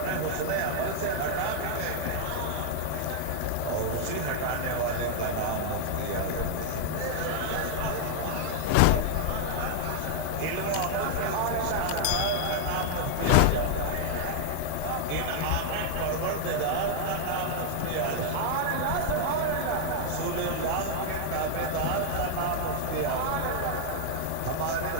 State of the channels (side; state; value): both; different; correlation 0.00